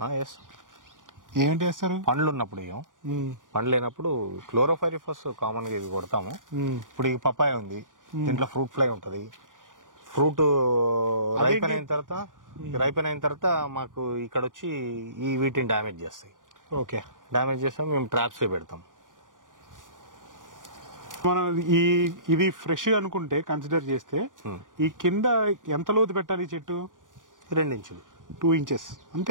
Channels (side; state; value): left; late; 0.88 ms